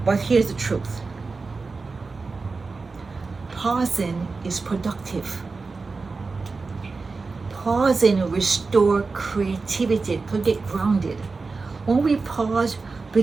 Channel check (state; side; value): quieter; left; 4.2 dB